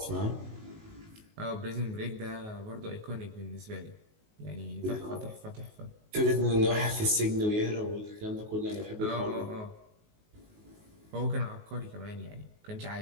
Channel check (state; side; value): late; left; 19 ms